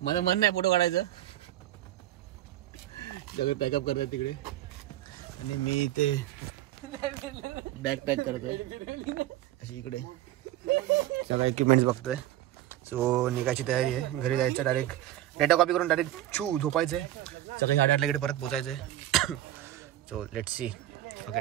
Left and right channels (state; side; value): quieter; left; 13.8 dB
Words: माझं मन नाही फोटो काढायचं. सगळे पॅकअप करतात तिकडे आणि मी इथे बॅग पॅक करतोय अशी इकडे सगळं इक्विपमेंट्स बघतोय. सो निघायची तयारी आहे. घरी जायचं डायरेक्ट डेटा कॉपी करून डायरेक्ट झोपायचंय. सकाळी 8:30 इकडे परत पोचायचंय. So let's see. Okay